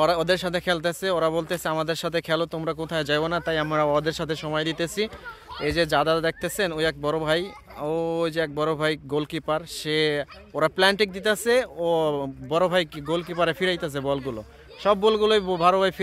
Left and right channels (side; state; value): both; identical; correlation 1.00